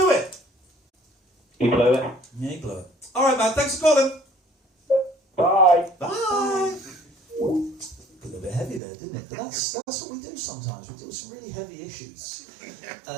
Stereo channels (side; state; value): left; drops out; at 8.8 s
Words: it. He blew it. Yeah, he blew it. All right, man, thanks for calling. Bye. Bye. Got a bit heavy there, didn't it? But that's what we do sometimes. We deal with some really heavy issues.